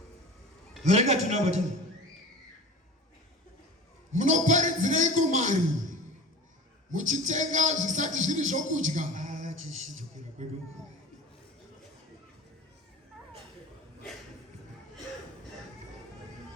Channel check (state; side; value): normal; both; correlation 0.36